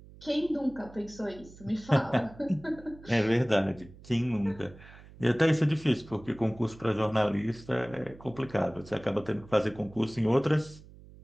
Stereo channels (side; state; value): right; noise; hum, 20 dB below the sound